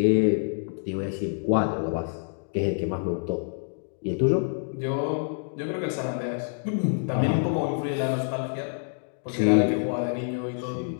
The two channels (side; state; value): right; silent; digital silence